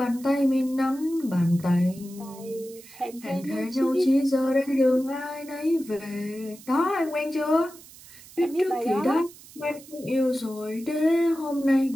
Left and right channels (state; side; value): noise; right; hiss, 20 dB below the sound